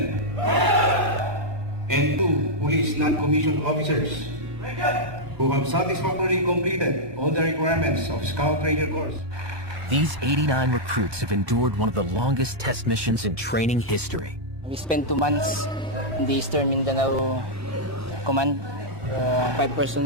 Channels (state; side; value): late; left; 1.2 ms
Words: and 2 police non-commissioned officers who have satisfactorily completed all the requirements of Scout Ranger course. These 89 recruits have endured one of the longest test missions in training history. We spent 2 months in the Eastern Mindanao Command. 5